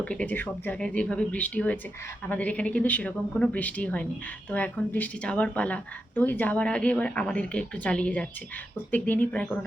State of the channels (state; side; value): normal; both; correlation 0.87